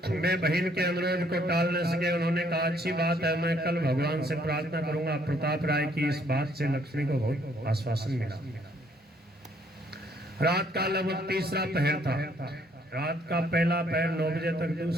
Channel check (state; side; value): normal; both; correlation 0.66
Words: वे बहन के अनुरोध को टाल न सके। उन्होंने कहा, अच्छी बात है, मैं कल भगवान से प्रार्थना करूंगा। प्रताप राय की इस बात से लक्ष्मी को बहुत आश्वासन मिला। रात का लगभग तीसरा पहर था। रात का पहला पहर 9 बजे तक,